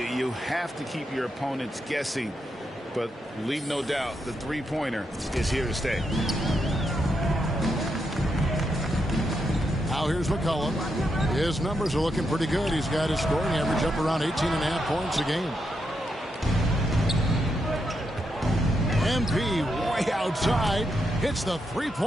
have to keep your opponents guessing. But leave no doubt, the three-pointer is here to stay. Now here's McCollum. His numbers are looking pretty good. He's got his scoring average up around 18.5 points a game. MP way outside. Hits the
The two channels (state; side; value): normal; both; correlation 0.82